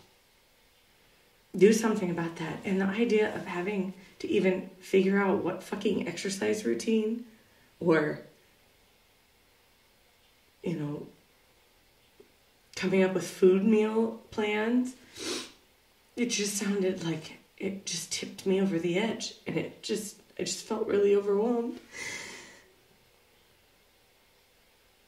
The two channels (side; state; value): both; identical; correlation 1.00